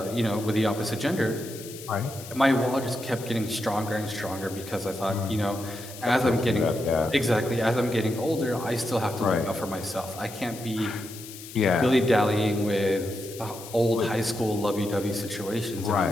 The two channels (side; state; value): left; noise; hiss, 14 dB below the sound